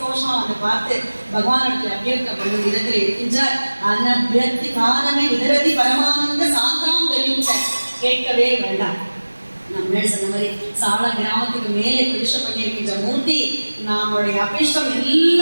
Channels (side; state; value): both; inverted; correlation -1.00